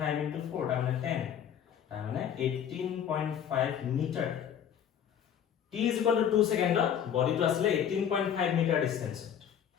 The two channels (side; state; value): right; quieter; 8.9 dB